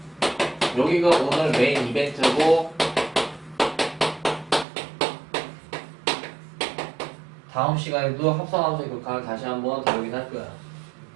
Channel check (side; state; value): left; drops out; at 4.7 s